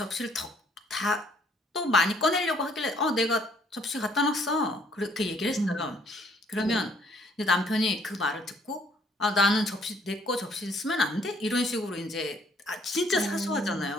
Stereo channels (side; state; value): both; normal; correlation 0.63